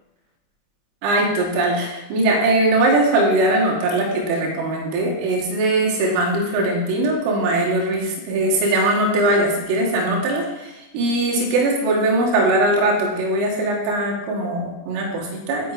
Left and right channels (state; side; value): late; left; 24 ms